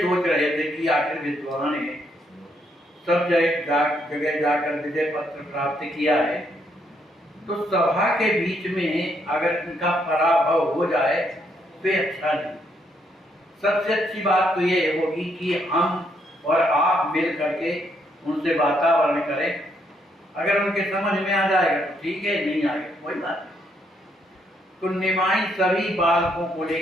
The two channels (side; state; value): both; normal; correlation 0.74